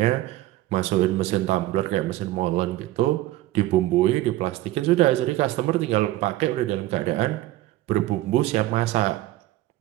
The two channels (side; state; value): left; quieter; 16.2 dB